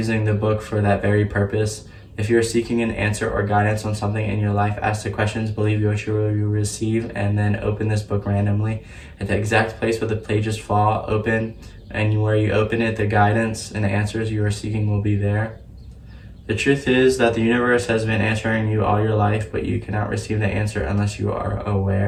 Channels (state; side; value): identical; both; correlation 1.00